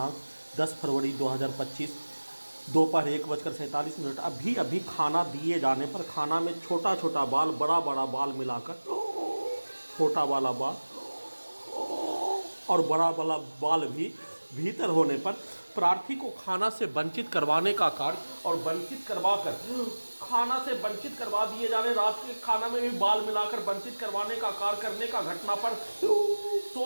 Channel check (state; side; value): inverted; both; correlation -1.00